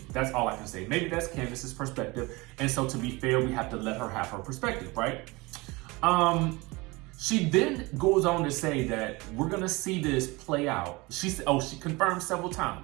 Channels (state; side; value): quieter; left; 23.9 dB